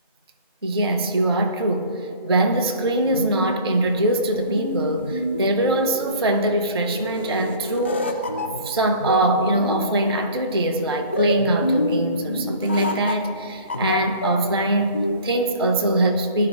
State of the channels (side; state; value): both; inverted; correlation -0.46